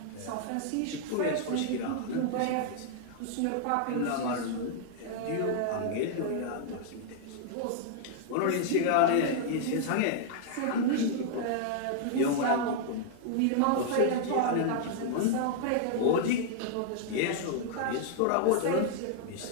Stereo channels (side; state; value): both; different; correlation -0.01